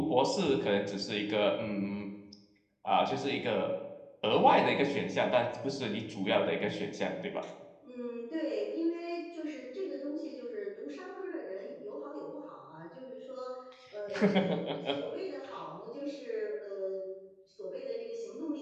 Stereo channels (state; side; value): identical; both; correlation 1.00